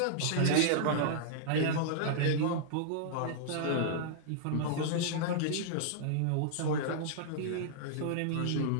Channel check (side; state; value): both; different; correlation -0.02